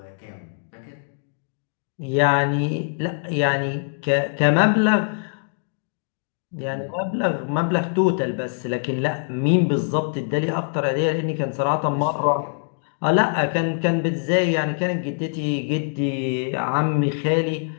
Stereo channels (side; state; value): right; silent; digital silence